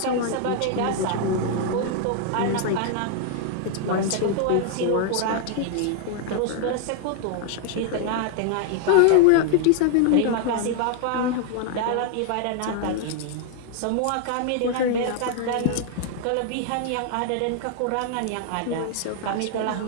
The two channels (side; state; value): both; different; correlation 0.00